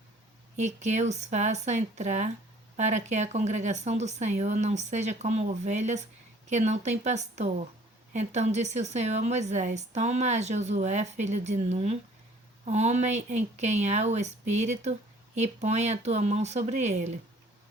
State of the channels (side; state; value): both; normal; correlation 0.55